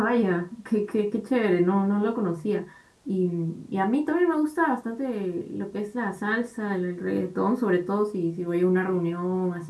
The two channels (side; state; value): both; identical; correlation 1.00